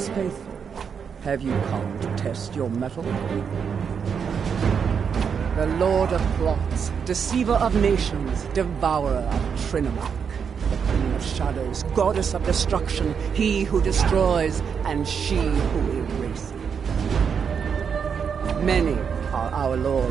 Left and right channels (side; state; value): left; quieter; 6.8 dB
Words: faithful. Have you come to test your mettle? The Lord of Plots, deceiver of nations, devourer of Trinamark, the Queen of Shadows, goddess of destruction, he who destroys and she who erases. Many are our